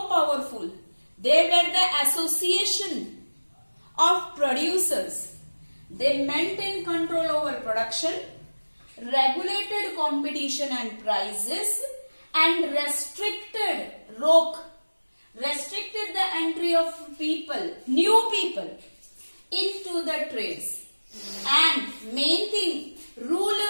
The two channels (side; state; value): both; inverted; correlation -1.00